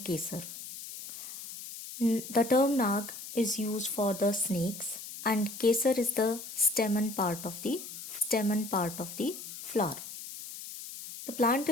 Kesar. The term Nag is used for the snakes and Kesar is the stamen part of the flower. The plant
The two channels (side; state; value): left; noise; hiss, 11 dB below the sound